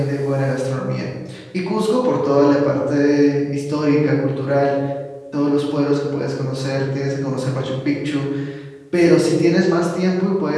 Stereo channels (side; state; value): both; identical; correlation 1.00